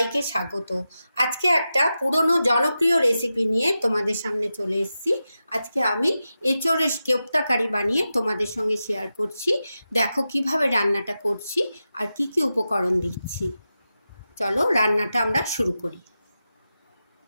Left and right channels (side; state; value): both; inverted; correlation -0.91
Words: স্বাগত। আজকে একটা পুরনো জনপ্রিয় রেসিপি নিয়ে তোমাদের সামনে চলে এসেছি। আজকে আমি এঁচোড়ের কোপ্তা কারি বানিয়ে তোমাদের সঙ্গে শেয়ার করছি। দেখো কিভাবে রান্নাটা করছি আর কি কি উপকরণ দিচ্ছি। চলো রান্নাটা আমরা শুরু করি।